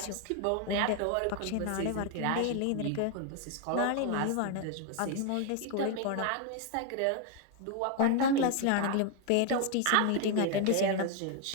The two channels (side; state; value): both; different; correlation 0.01